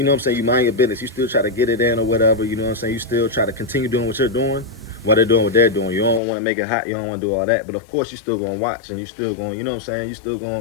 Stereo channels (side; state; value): right; drops out; at 6.2 s